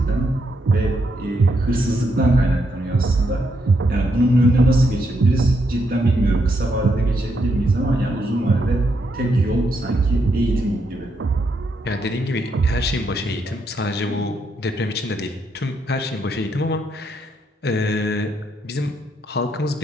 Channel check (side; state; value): both; normal; correlation 0.78